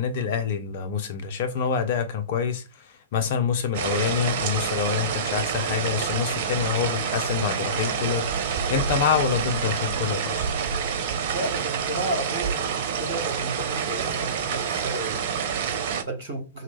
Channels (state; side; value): inverted; both; correlation -0.31